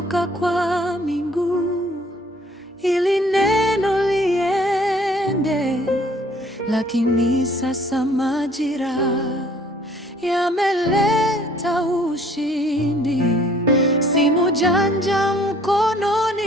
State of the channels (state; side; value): normal; both; correlation 0.58